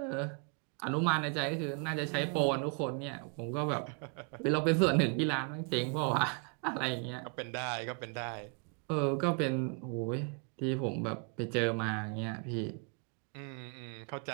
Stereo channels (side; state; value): left; quieter; 34.7 dB